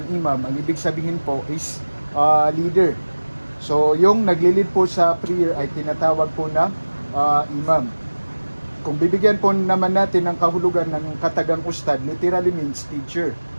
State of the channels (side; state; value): both; inverted; correlation -1.00